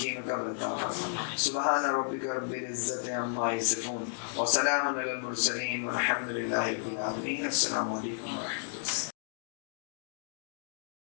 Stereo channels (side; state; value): right; silent; digital silence